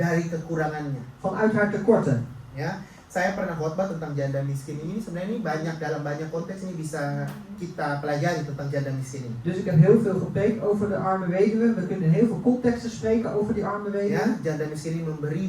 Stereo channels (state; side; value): identical; both; correlation 1.00